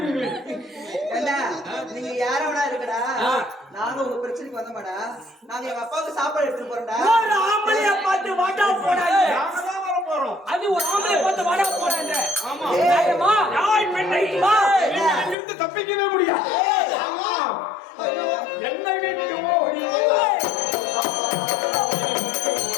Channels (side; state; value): right; drops out; at 15.4 s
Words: ஏண்டா நீங்க யாரோடா இருக்கடா? நாங்க உங்க பிரச்சனைக்கு வந்தோமாடா. நாங்க எங்க அப்பாவுக்கு சாப்பாடு எடுத்துட்டு போறோம்டா. ஒரு ஆம்பளைய பார்த்து வாடா போடாங்க. நாங்க தான் வர போறோம். அது ஒரு ஆம்பளைய பார்த்து வாடா போடாங்க. ஆமா. ஏய்மா யாய் பெண்ணை நீங்க இருந்து தப்பிக்கவே முடியாது. ஆமா. என்னை விட்டு ஓடி